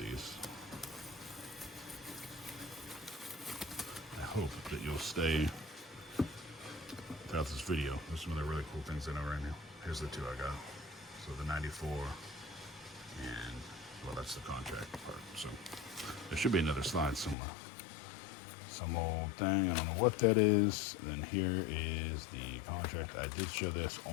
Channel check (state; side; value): drops out; right; at 17.4 s